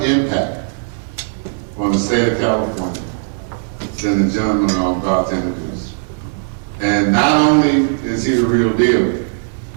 impact on the state of California than the gentleman I'm about to introduce. And not only is he the real deal,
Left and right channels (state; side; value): silent; left; digital silence